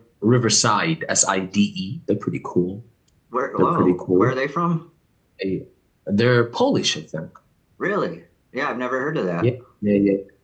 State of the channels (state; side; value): identical; both; correlation 1.00